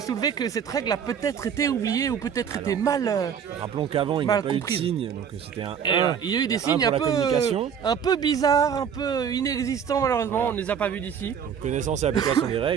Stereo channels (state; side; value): quieter; left; 7.7 dB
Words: soulever que cette règle a peut-être été oubliée ou peut-être été mal. Rappelons qu'avant, il n'y a Mal pas eu de comprise. signe, donc c'était un Et 1. il y a eu des un signes pour la communication. un peu bizarres, un peu inexistants malheureusement. On ne les a pas vus d'ici. Donc, connaissance et application des